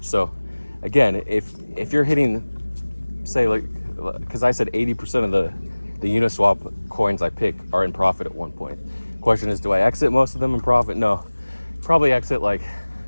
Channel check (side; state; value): both; inverted; correlation -1.00